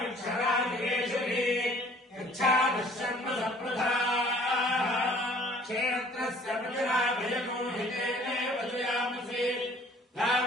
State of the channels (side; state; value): both; normal; correlation 0.54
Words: పృథివీక్షరాజేశ్వరి యచ్ఛాదశర్మ సప్రధా క్షేత్రస్య ప్రతిరాభయనో హితేనే వదయామసి